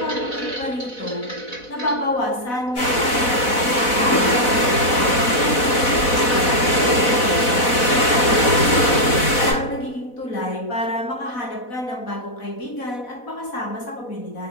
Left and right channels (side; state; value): right; late; 4.1 ms